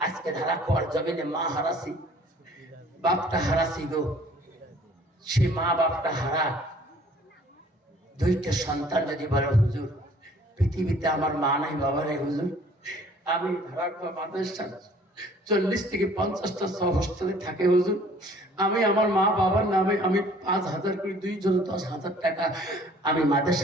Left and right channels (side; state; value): both; normal; correlation 0.54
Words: আজকে ধারা খোয়ার জমিনে মা হারাসি, বাপটা হারাসি গো। সে মা বাপটা হারা, দুইটা সন্তান যদি বলে হুজুর পৃথিবীতে আমার মা নাই বাবা নাই হুজুর, আমি ধারা খোয়া মাদ্রাসা 40 থেকে 50টা হোস্টেলে থাকে হুজুর, আমি আমার মা বাবার নামে আমি 5,000 করে 2 জন 10,000 টাকা আমি